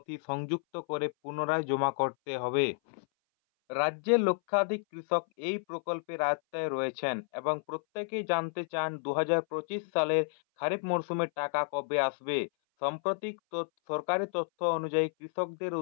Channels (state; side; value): silent; right; 57 dB below the other